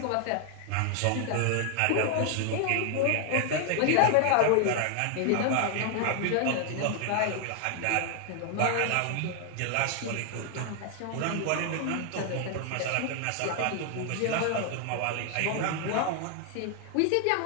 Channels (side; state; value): both; different; correlation 0.00